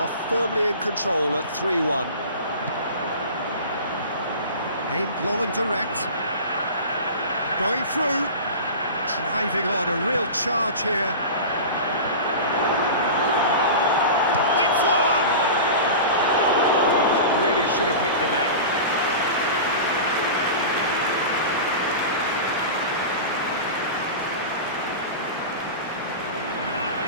firmly in control at 3-1. Aimed long and direct. Going through, driving on, a real charge here. It's one! That really should have hit the net.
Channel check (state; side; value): inverted; both; correlation -0.32